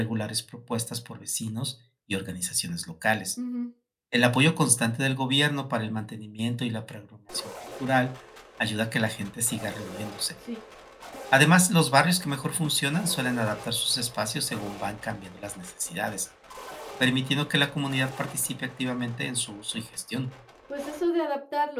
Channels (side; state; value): both; identical; correlation 1.00